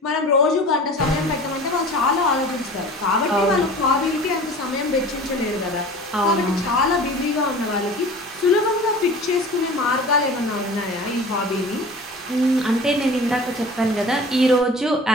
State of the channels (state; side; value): normal; both; correlation 0.40